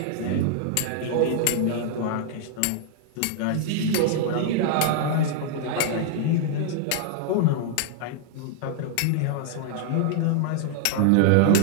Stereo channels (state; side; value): different; both; correlation -0.01